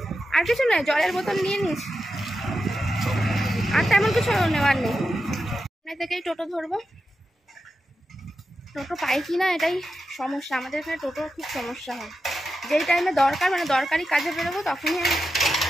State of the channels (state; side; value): normal; both; correlation 0.90